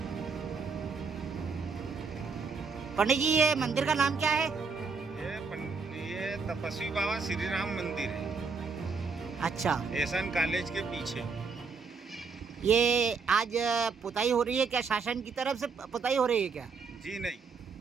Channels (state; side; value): quieter; left; 5.0 dB